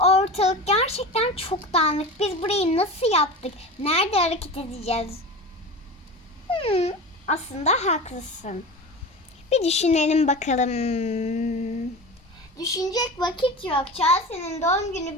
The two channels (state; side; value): normal; both; correlation 0.30